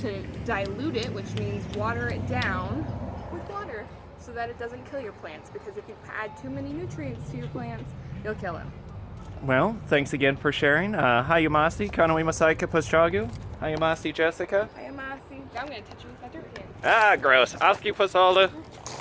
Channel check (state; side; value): identical; both; correlation 1.00